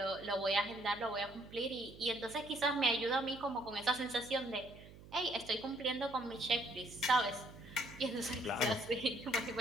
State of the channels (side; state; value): right; noise; hum, 18 dB below the sound